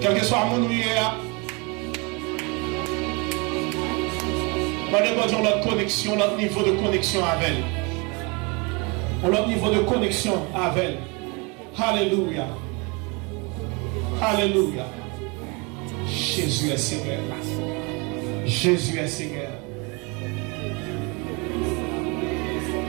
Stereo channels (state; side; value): quieter; left; 29.5 dB